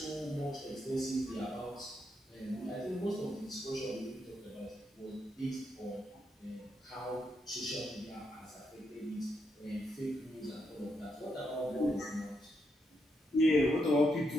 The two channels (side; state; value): both; normal; correlation 0.80